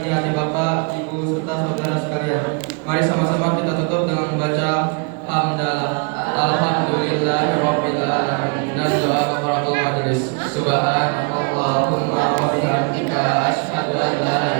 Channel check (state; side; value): quieter; left; 33.5 dB